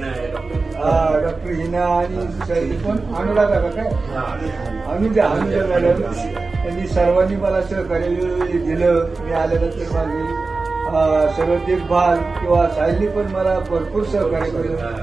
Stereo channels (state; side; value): quieter; left; 3.8 dB